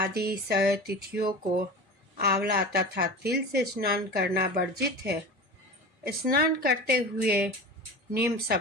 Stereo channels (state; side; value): normal; both; correlation 0.31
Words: तिथियों को आंवला तथा तिल से स्नान करना वर्जित है। स्नान करते हुए निम्न